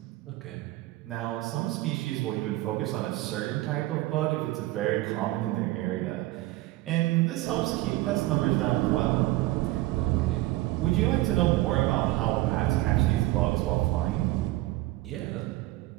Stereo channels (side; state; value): left; quieter; 18.1 dB